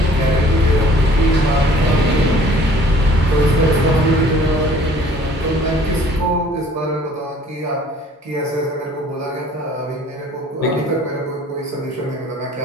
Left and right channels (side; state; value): both; normal; correlation 0.54